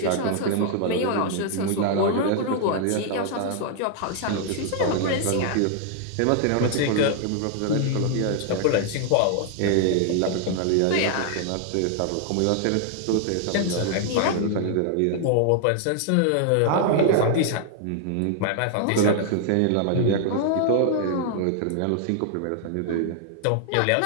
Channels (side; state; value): both; different; correlation 0.00